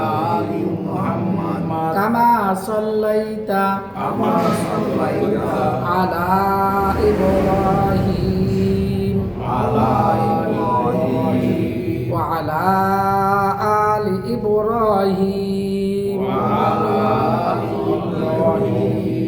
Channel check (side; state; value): both; identical; correlation 1.00